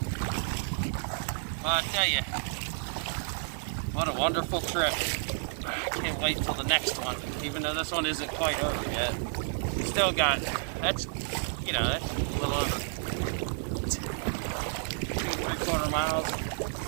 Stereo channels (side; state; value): left; silent; digital silence